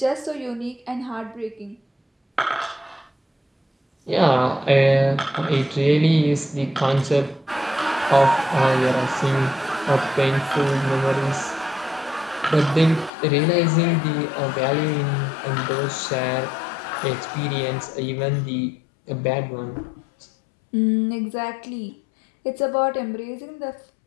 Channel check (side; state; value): right; drops out; at 13.1 s